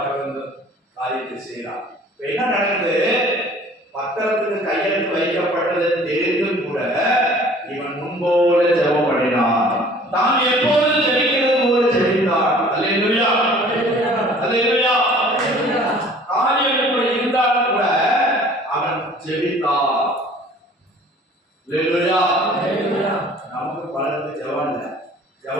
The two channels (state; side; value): normal; both; correlation 0.51